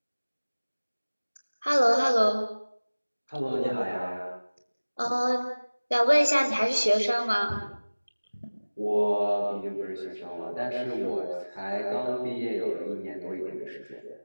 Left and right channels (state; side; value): inverted; both; correlation -1.00